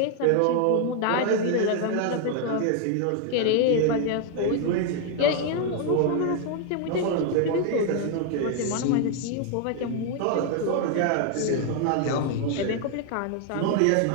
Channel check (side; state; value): both; different; correlation 0.00